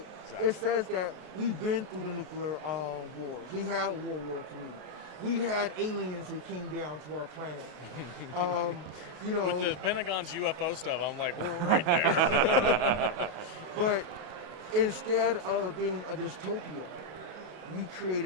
Exactly. It says that we've been through the nuclear wars. We had World War III. We had aliens that came down to our planet. You know, with the Pentagon's UFO stuff, I'm like, we're right there. But instead of being a dystopia, we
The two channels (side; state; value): left; late; 33 ms